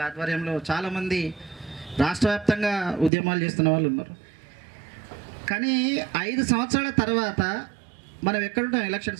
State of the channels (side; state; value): left; drops out; at 3.1 s